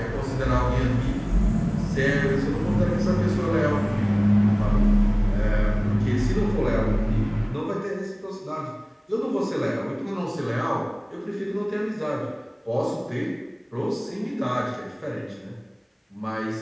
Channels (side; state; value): both; identical; correlation 1.00